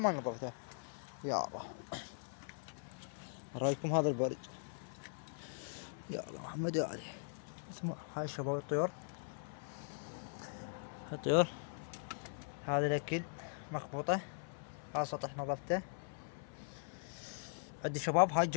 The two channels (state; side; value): silent; right; 51 dB below the other